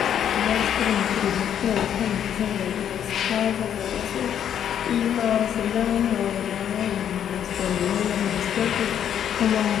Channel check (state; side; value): quieter; right; 9.4 dB